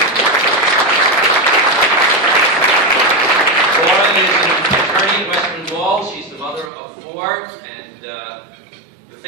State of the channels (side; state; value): left; drops out; at 6.7 s